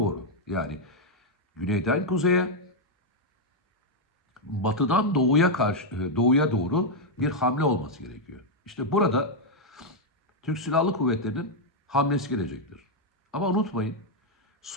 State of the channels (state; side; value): normal; both; correlation -0.02